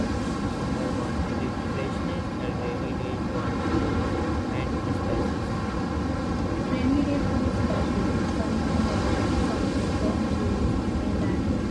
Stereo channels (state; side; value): identical; both; correlation 1.00